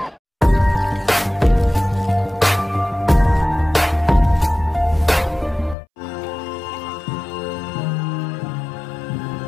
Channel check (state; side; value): drops out; right; at 5.8 s